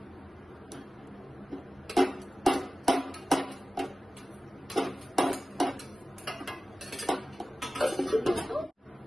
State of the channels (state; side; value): normal; both; correlation 0.95